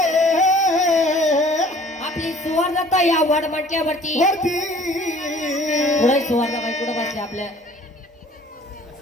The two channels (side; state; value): both; normal; correlation 0.51